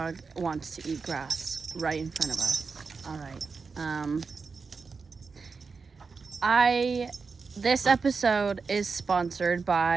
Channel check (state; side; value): quieter; left; 4.8 dB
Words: wants to eat grass right in front of us. All right. This episode is sponsored